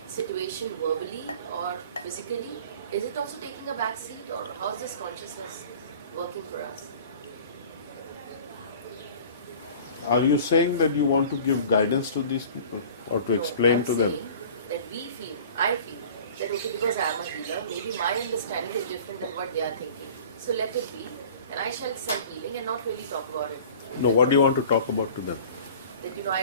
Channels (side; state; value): both; inverted; correlation -0.44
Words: situation verbally or physically. Is it also taking a backseat, or how is this consciousness working for us? Are you saying that you want to give guidance to these people or to explain to them? That I feel that okay, because I am a healer, maybe my understanding is different than what they are thinking. So let it be, and I shall send healing and not really talk about it. No, what do you want to talk about to them? That I